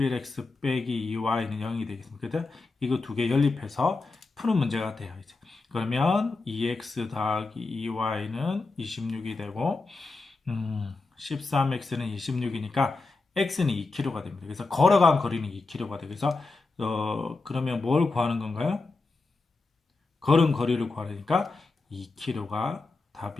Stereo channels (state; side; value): quieter; right; 3.7 dB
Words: 빼기 2y는 0이 되겠습니다. 그래서 이거 두 개 연립해서 푸는 문제가 돼요. 이제. 그러면 2x 더하기 2y는 26이 되고 13x는 26이니까 x는 2km가 됩니다. 그래서 걸어간 거리는 2km가 되고, 그래서 그러면 뭘 구하는 건가요? 걸은 거리를 구하니까 2km가